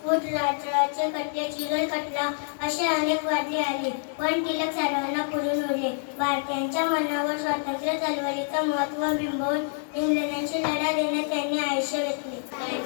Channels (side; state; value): right; silent; digital silence